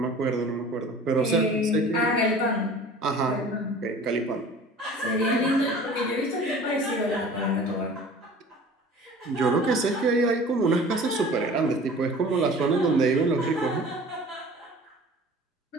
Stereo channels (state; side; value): normal; both; correlation 0.44